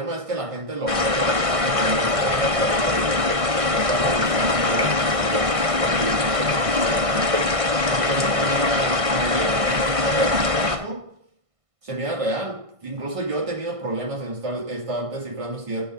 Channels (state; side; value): late; left; 1.6 ms